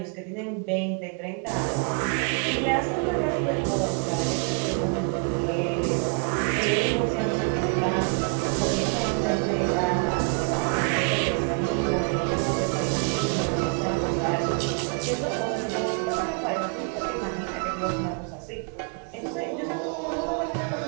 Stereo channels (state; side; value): quieter; left; 39.1 dB